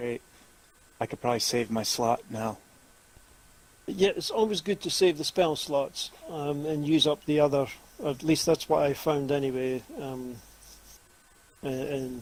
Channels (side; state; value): both; identical; correlation 1.00